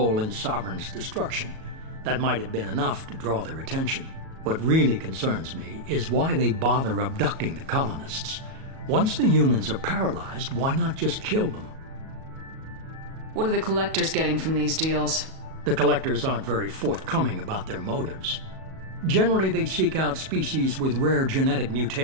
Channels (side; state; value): left; late; 37 ms